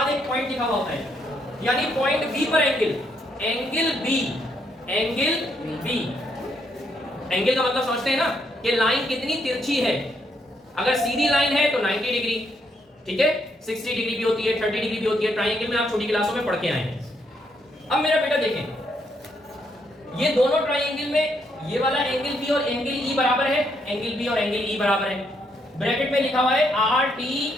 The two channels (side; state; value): both; normal; correlation 0.75